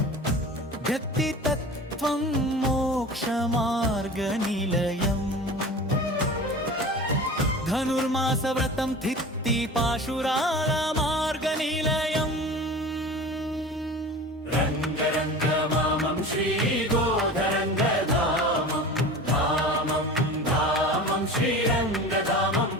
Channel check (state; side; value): normal; both; correlation 0.36